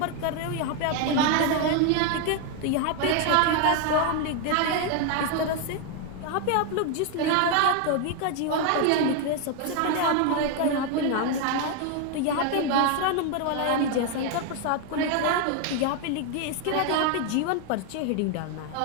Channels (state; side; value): different; both; correlation 0.01